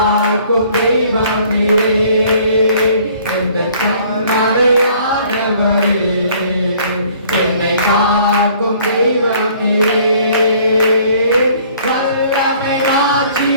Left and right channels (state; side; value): inverted; both; correlation -0.57